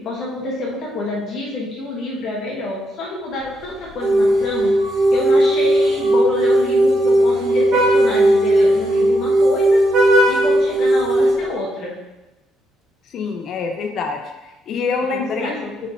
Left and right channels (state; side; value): normal; both; correlation 0.80